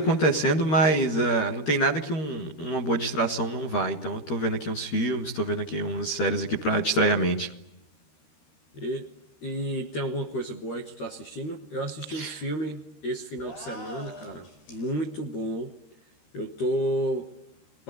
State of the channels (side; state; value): right; late; 13 ms